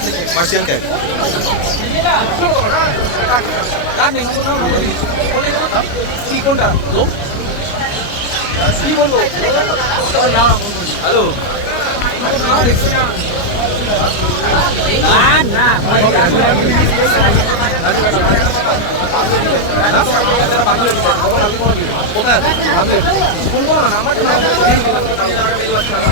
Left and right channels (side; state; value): right; late; 29 ms